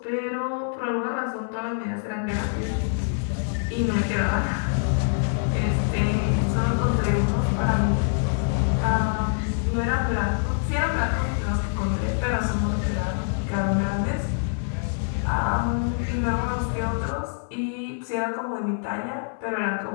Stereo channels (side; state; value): right; silent; 59 dB below the other